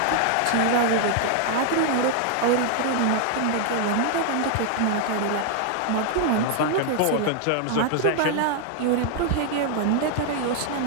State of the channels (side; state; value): both; different; correlation 0.00